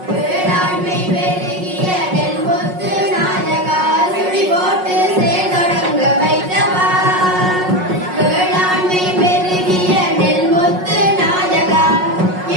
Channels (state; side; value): late; left; 5.5 ms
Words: வேளாண்மை பெருகிய நெல்முத்து நாயகா சுழி போட்டு செயல்தொடங்க வைத்தவா. வேளாண்மை பெருகிய நெல்முத்து நாயகா